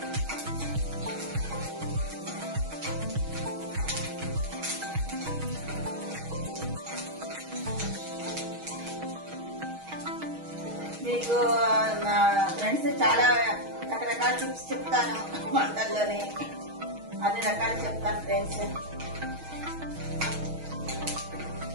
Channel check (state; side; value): late; left; 6.3 ms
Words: మీకు ఫ్రెండ్స్ చాలా రకరకాల టిప్స్ చెప్తాను వంటల్లోనే, అన్ని రకాలు చెప్తాను ఫ్రెండ్స్.